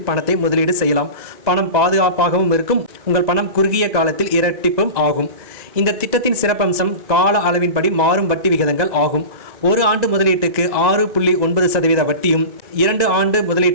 பணத்தை முதலீடு செய்யலாம். பணம் பாதுகாப்பாகவும் இருக்கும். உங்கள் பணம் குறுகிய காலத்தில் இரட்டிப்பும் ஆகும். இந்த திட்டத்தின் சிறப்பம்சம் கால அளவின்படி மாறும் வட்டி விகிதங்கள் ஆகும். 1 ஆண்டு முதலீட்டுக்கு 6.9% வட்டியும், 2 ஆண்டு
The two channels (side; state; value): left; late; 2.0 ms